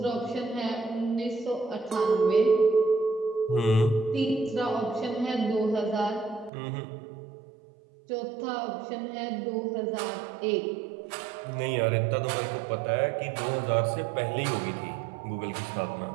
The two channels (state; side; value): drops out; left; at 6.5 s